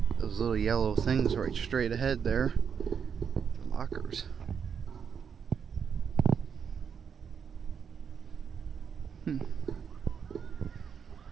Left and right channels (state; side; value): quieter; left; 7.0 dB